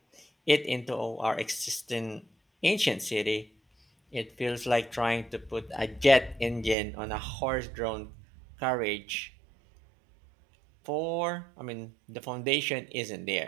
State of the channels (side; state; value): left; drops out; at 6.8 s